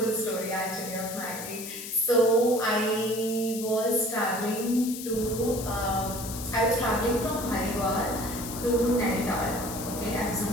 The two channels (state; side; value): noise; left; hiss, 9 dB below the sound